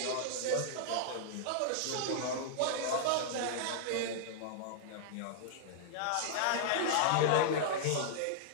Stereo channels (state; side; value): different; both; correlation -0.01